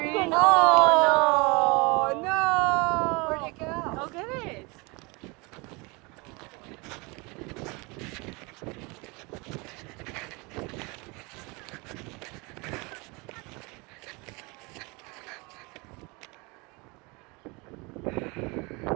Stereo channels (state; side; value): quieter; left; 27.2 dB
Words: Oh, no! Where'd it go? Go get it.